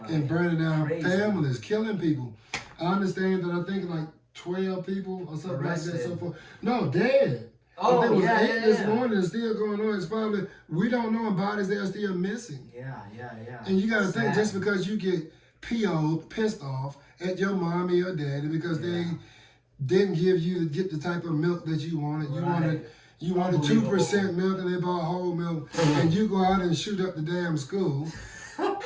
and burning down families, killing people. I understand that I think like 12 people or something like that so far. No, dead. I think it was 8 this morning and still going on. It's probably, we don't know, and bodies that are still missing. And you got to think, just because you get pissed off at your mommy or daddy because they didn't get the type of milk that you wanted. You wanted 2% milk and they bought whole milk, and you go out and shoot up the damn school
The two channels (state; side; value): identical; both; correlation 1.00